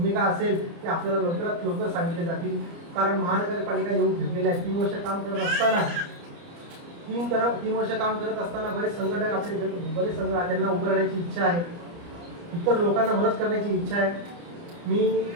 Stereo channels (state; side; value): late; left; 29 ms